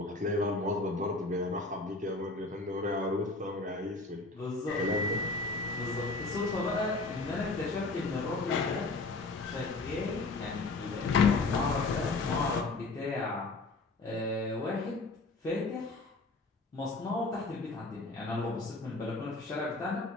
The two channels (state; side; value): quieter; right; 3.4 dB